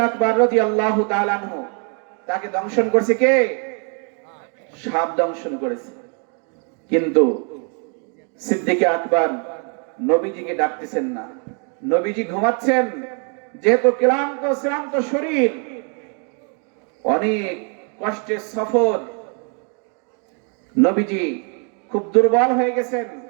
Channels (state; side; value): quieter; left; 39.8 dB